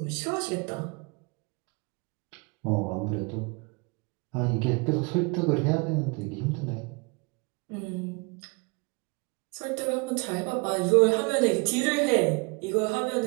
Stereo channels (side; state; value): left; quieter; 30.3 dB